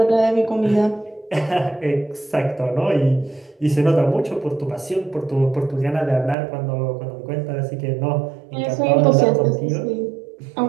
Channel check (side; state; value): left; drops out; at 6.4 s